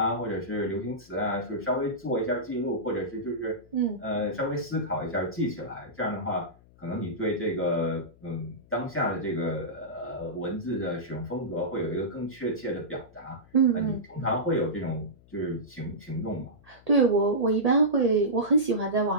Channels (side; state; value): left; noise; hum, 26 dB below the sound